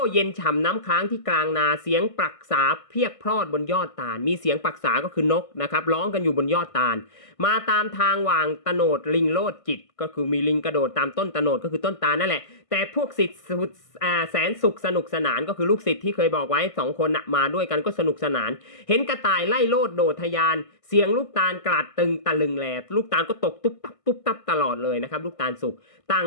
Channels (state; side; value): late; right; 1.5 ms